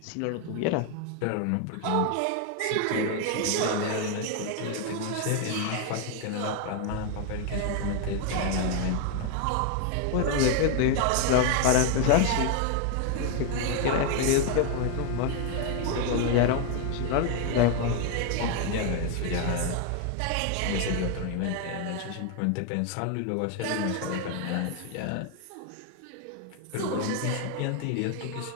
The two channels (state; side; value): different; both; correlation 0.01